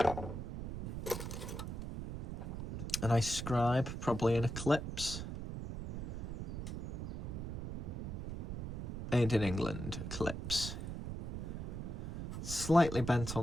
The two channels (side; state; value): right; noise; rumble, 5 dB below the sound